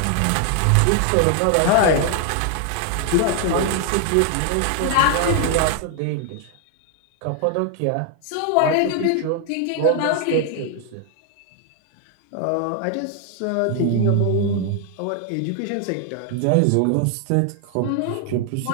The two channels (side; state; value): both; different; correlation 0.00